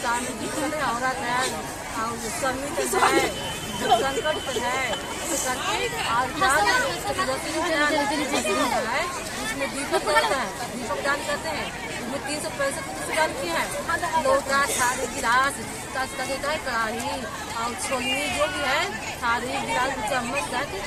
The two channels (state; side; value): identical; both; correlation 1.00